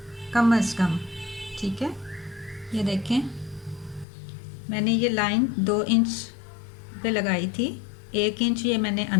कम अज़ कम। ठीक है, ये देखें मैंने ये लाइन 2 इंच पे लगाई थी, 1 इंच ये मैंने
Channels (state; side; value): drops out; right; at 4.0 s